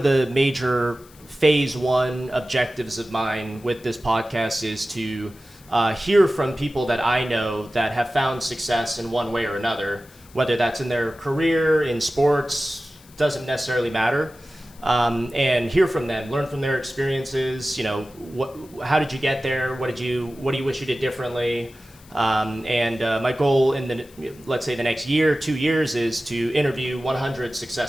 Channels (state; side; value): noise; left; hiss, 25 dB below the sound